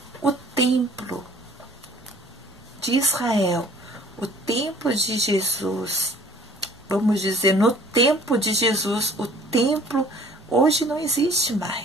O templo de Israel, o templo de Jesus, vamos dizer, no tempo de Jesus, o templo hoje não existe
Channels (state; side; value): normal; both; correlation 0.52